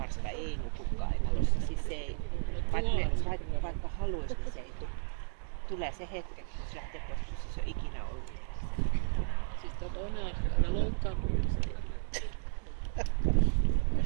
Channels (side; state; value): left; silent; digital silence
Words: ei nuku kainalossa. Siis se ei, vaikka haluaisi, niin se ei tule. Tulee se hetki, kun se lähtee pois, jos se on ikinä ollut. Siis toinen asia, loukkaantumista.